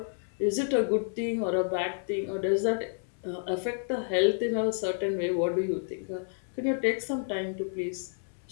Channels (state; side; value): silent; right; digital silence